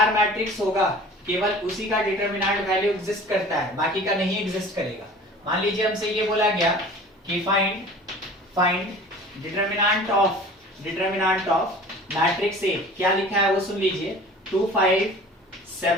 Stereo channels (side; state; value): both; normal; correlation 0.43